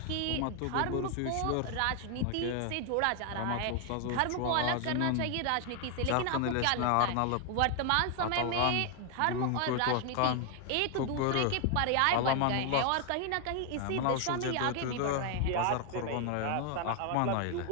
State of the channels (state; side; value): different; both; correlation 0.00